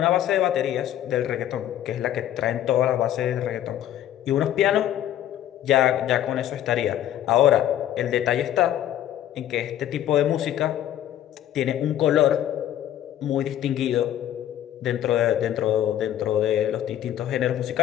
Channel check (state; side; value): quieter; right; 11.7 dB